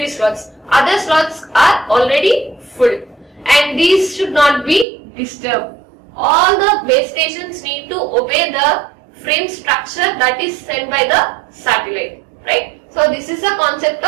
slots. Other slots are already full, and these should not be disturbed. All the base stations need to obey the frame structure that is sent by the satellite, right? So this is the concept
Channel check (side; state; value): left; drops out; at 4.9 s